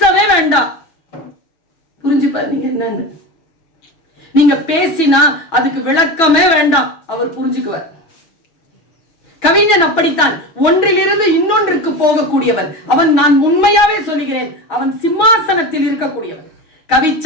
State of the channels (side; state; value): right; late; 6.2 ms